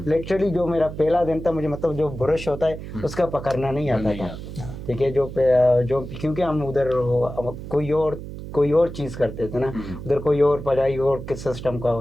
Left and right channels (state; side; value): noise; right; hum, 10 dB below the sound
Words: लिटरली जो मेरा पहला दिन था, मुझे मतलब जो ब्रश होता है उसका पकड़ना नहीं आता था, ठीक है। जो क्योंकि हम उधर कोई और चीज़ करते थे ना, उधर कोई और पढ़ाई और किस सिस्टम का